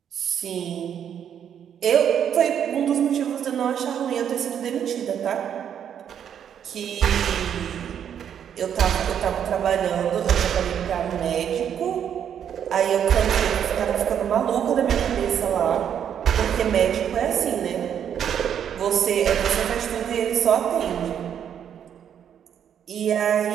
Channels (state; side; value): quieter; left; 8.9 dB